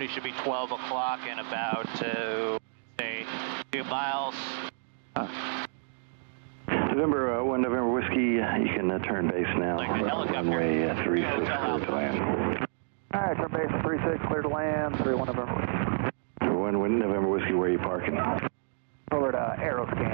should be 12 o'clock in about, say, 2 miles. November 1 November Whiskey, you can turn base now. Like the helicopter. Runway 36, clear to land. Alright, turn base 36, clear to land, 31 November Whiskey. 1 November Whiskey, where are you parking? Over to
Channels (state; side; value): silent; left; digital silence